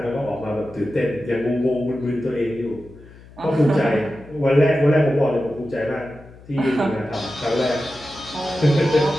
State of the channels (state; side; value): noise; left; hum, 21 dB below the sound